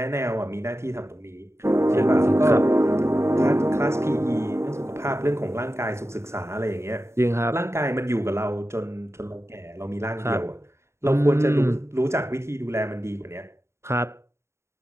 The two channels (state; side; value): late; left; 0.13 ms